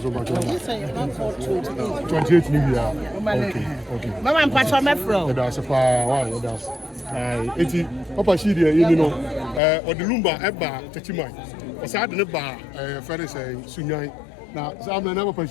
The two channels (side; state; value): right; drops out; at 9.6 s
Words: 28 million. Okay. Mama and Papa, my friend. That's a far. That's. Eti Papa Shidi, you know, or the Lumba, Eba, Tachimai. Was I the bar, Ferris, Sunyai. Now, some never